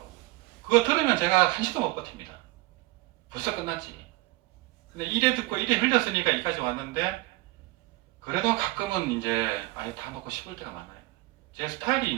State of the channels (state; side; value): quieter; left; 20.5 dB